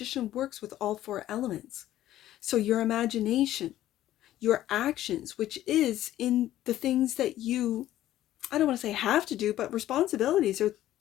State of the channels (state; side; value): quieter; right; 13.5 dB